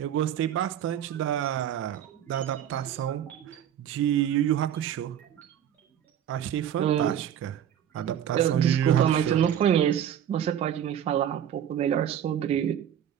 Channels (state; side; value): quieter; left; 9.9 dB